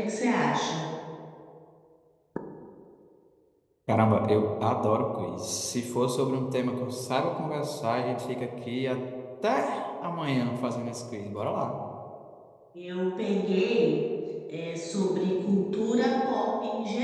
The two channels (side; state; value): both; identical; correlation 1.00